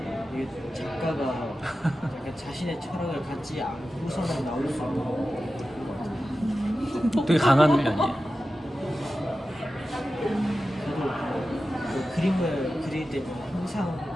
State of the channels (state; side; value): normal; both; correlation 0.93